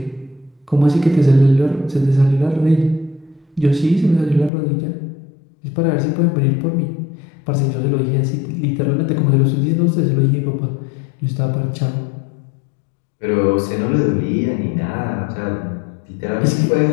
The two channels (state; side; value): drops out; right; at 4.5 s